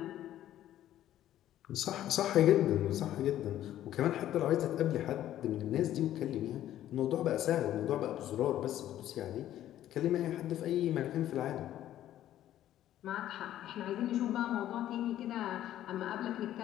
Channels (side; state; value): right; quieter; 12.5 dB